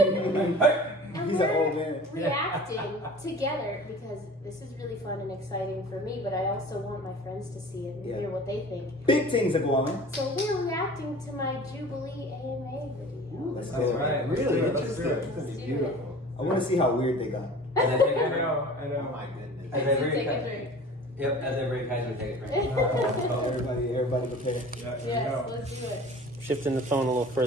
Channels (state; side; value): normal; both; correlation 0.42